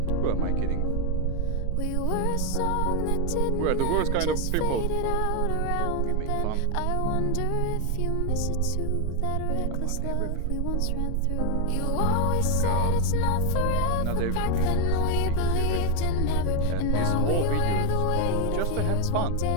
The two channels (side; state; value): both; different; correlation 0.01